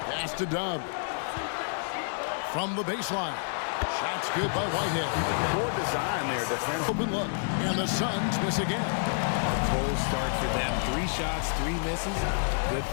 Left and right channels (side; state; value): right; silent; digital silence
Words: Pass to Dub. From the baseline. Shots good by Whitehead. Poor design there, defense. Open look. And the Suns miss again. A cold start for them. 3 shots, 3 misses. Good